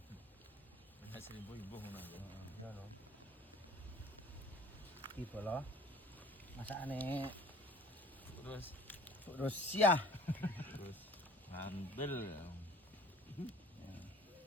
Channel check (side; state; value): both; normal; correlation 0.49